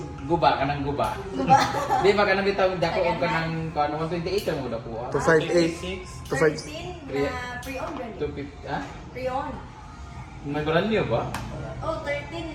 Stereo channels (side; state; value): both; identical; correlation 1.00